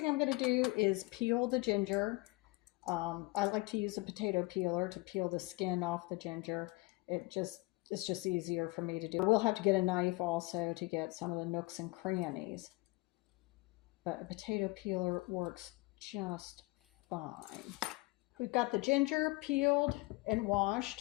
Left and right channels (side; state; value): right; quieter; 23.4 dB